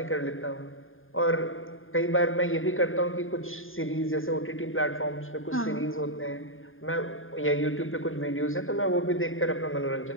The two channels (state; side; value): late; right; 0.59 ms